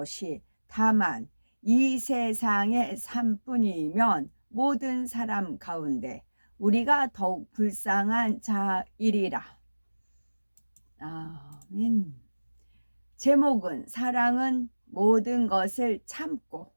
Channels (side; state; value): both; inverted; correlation -1.00